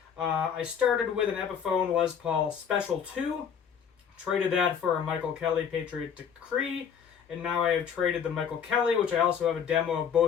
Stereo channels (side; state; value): right; quieter; 7.6 dB